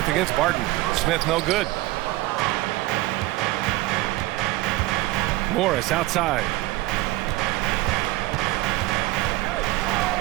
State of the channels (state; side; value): quieter; left; 18.6 dB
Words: against Barton. Smith no good. Morris outside.